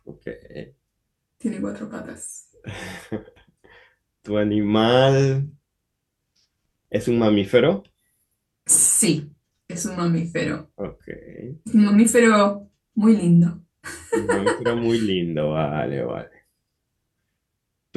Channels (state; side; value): identical; both; correlation 1.00